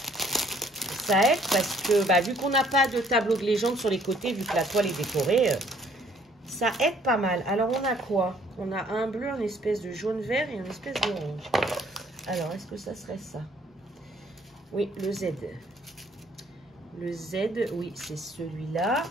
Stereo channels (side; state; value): both; normal; correlation 0.62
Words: Ça aide parce que, bah, vu qu'on n'a pas de tableau de légende sur les côtés, vu que la toile est décorée, ça aide pas mal. Alors, on a quoi? On a un bleu, une espèce de jaune-vert et une espèce d'orange. Alors, est-ce que ça serait ça? Oui, le Z. Le Z, oui, c'est celui-là.